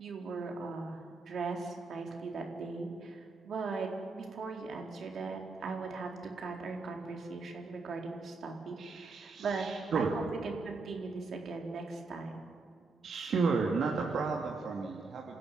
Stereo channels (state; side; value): quieter; left; 4.0 dB